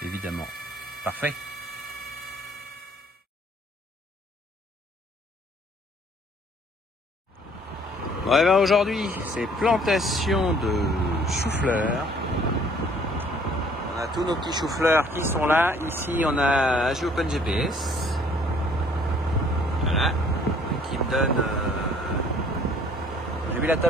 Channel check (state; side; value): normal; both; correlation 0.58